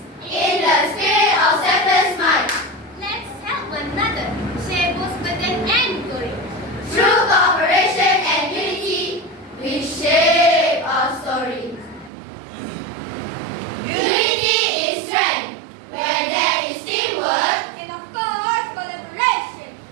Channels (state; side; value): drops out; left; at 12.1 s